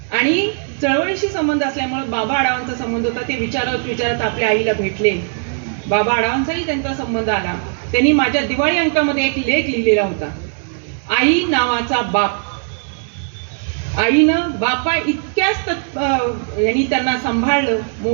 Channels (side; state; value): left; silent; 60 dB below the other